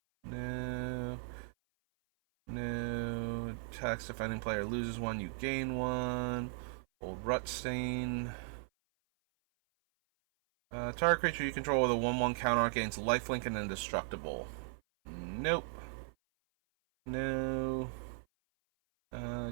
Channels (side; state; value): left; silent; 53 dB below the other